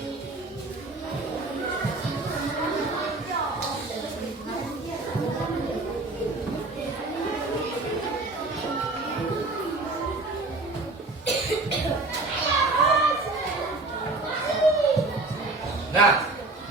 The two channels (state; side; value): quieter; left; 3.2 dB